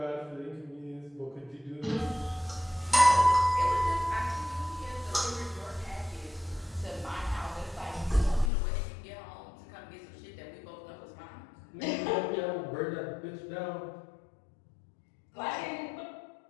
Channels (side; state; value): right; drops out; at 8.5 s